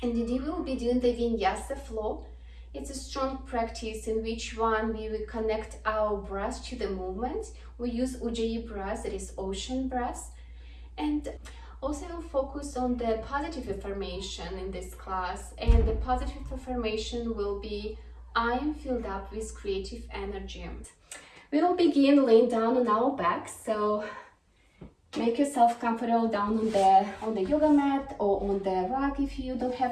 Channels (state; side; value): identical; both; correlation 1.00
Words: And today we will be doing the Vinyasa flow. It's a strong practice in which we will connect our breath to the movement. We use Ujjayi breath, that is ocean breath. And also we'll focus on the positive affirmation in this class. And the positive affirmation will be, I am filled up with creative energy. We will begin laying down on our back. So make yourself comfortable down on the yoga mat or on the rug if you don't